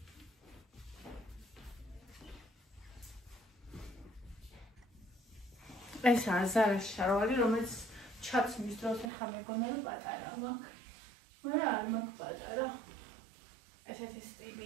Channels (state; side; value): drops out; left; at 9.1 s